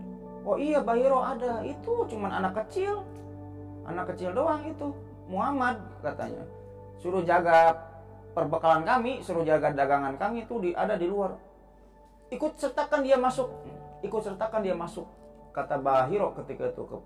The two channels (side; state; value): both; identical; correlation 1.00